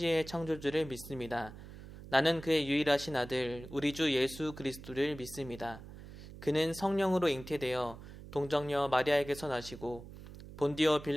창조주를 믿습니다. 나는 그의 유일하신 아들 우리 주 예수 그리스도를 믿습니다. 그는 성령으로 잉태되어 동정녀 마리아에게서 나시고 본디오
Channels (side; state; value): right; noise; hum, 15 dB below the sound